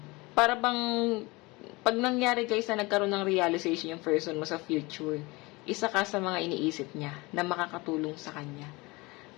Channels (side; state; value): right; quieter; 23.8 dB